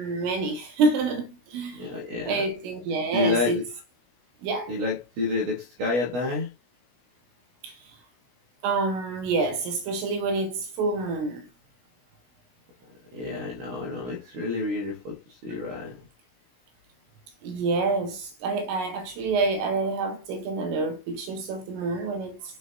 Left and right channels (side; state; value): left; late; 16 ms